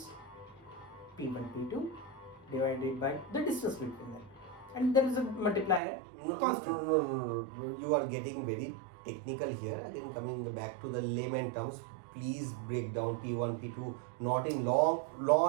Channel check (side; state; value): left; drops out; at 5.8 s